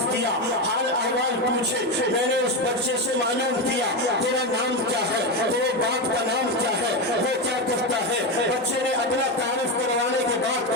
کیا، حال احوال پوچھے، میں نے اس بچے سے معلوم کیا تیرا نام کیا ہے، تیرے باپ کا نام کیا ہے، وہ کیا کرتا ہے؟ بچے نے اپنا تعارف کروانے کے بعد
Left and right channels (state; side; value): normal; both; correlation 0.13